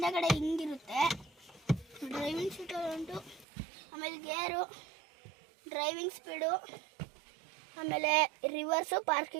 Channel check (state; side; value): drops out; left; at 3.5 s